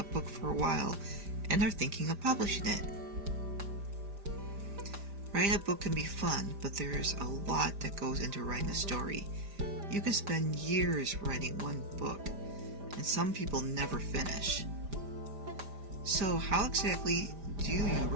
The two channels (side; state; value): left; late; 5.0 ms